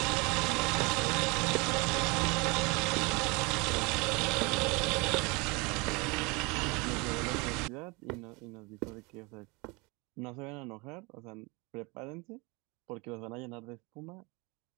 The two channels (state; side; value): quieter; left; 27.3 dB